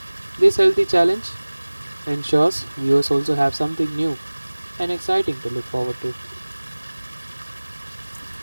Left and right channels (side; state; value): both; inverted; correlation -1.00